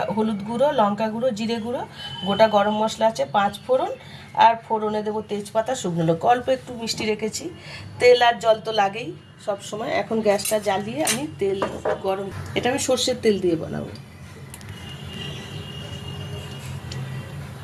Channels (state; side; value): identical; both; correlation 1.00